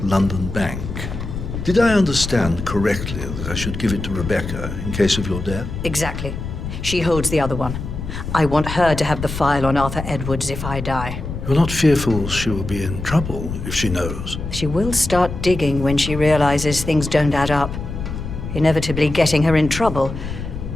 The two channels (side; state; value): left; noise; rumble, 7 dB below the sound